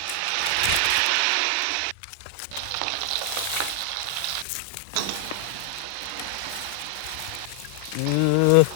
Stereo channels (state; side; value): different; both; correlation 0.00